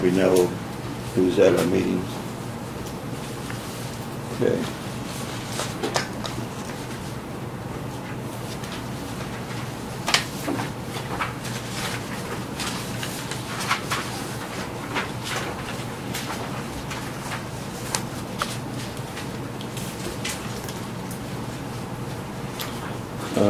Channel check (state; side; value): identical; both; correlation 1.00